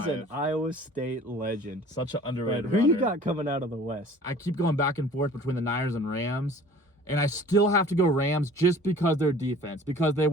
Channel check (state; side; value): normal; both; correlation 0.48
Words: is an Iowa State legend. Such an underrated But who runner. you got coming out of the West? I keep going back and forth between the Niners and Rams. And I still have to go Rams just because their defense, because they